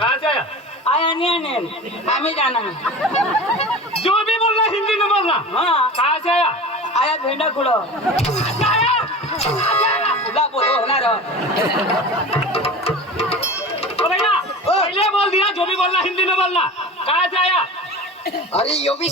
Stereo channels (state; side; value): normal; both; correlation 0.33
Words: से आया आया नहीं हमें जाना है जो भी बोलना हिंदी में बोलना हाँ कहाँ से आया आया भेंडा खुड़ो तुला बोलो ना रो ओ भैया पहले बोल दिया जो भी बोलना हिंदी में बोलना कहाँ से आया अरे यो भी